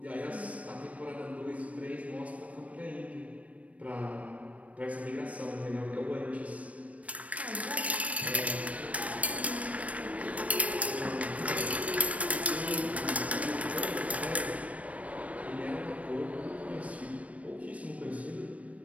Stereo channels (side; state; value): left; late; 0.066 ms